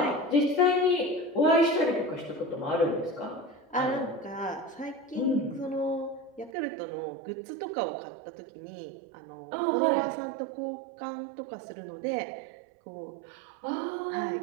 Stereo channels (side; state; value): left; drops out; at 6.5 s